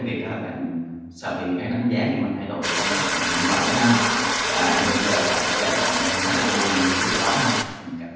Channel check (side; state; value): both; identical; correlation 1.00